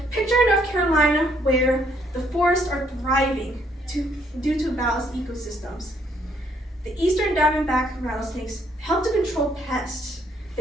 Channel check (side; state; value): both; normal; correlation 0.69